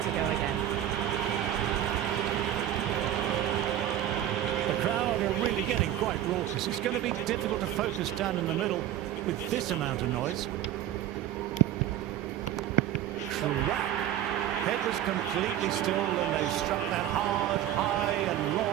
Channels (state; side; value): quieter; left; 11.8 dB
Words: to go again. The crowd are really getting quite raucous. It's going to be difficult to focus down in the middle with this amount of noise. Head was completely still and they struck that hard, high and